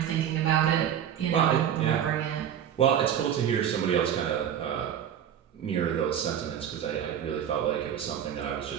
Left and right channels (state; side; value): quieter; left; 9.4 dB